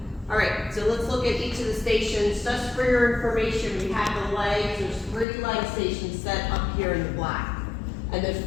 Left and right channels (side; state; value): right; drops out; at 5.2 s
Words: All right, so let's look at each of the stations. Just for your information, we have the legs. There's 3 leg stations set up here in the black. And there's